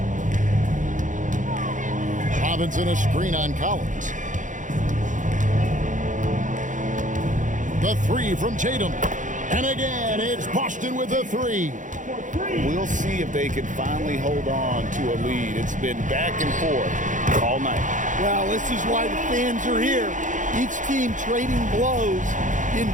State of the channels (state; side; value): late; left; 0.37 ms